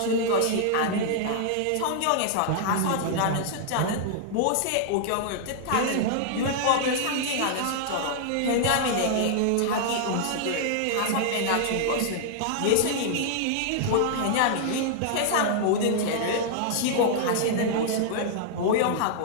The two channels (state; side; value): different; both; correlation -0.01